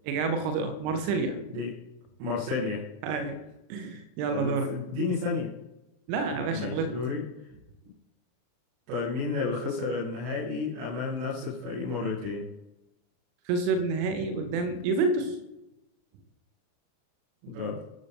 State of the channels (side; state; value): left; late; 40 ms